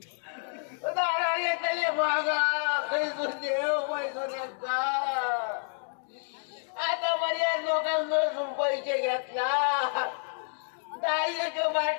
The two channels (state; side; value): silent; right; 58 dB below the other